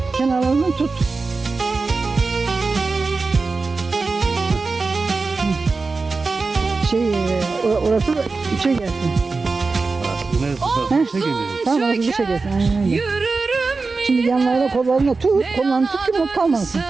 Kenarlarından tut. Orası da içe gelsin. Neresi? Şey geliyor. Tamam orası dışa gelsin. Aynen öyle. Yürürüm Şimdi yine, yanlarına kollarına tut. Kollarını tut ki not kalmasın.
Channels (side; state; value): left; quieter; 4.1 dB